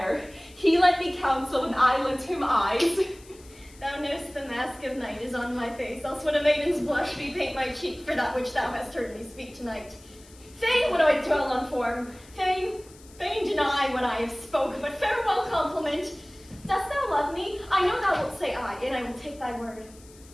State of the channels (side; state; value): left; noise; hiss, 24 dB below the sound